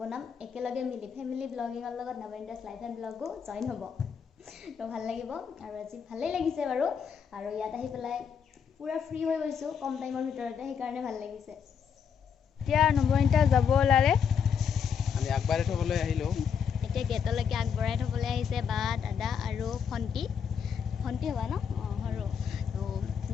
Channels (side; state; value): right; quieter; 7.1 dB